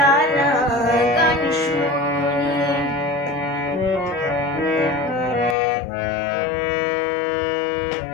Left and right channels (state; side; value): drops out; right; at 5.6 s